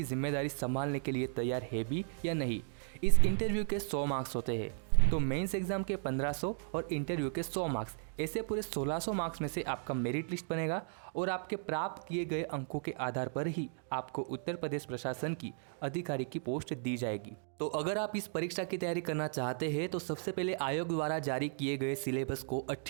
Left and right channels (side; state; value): left; silent; digital silence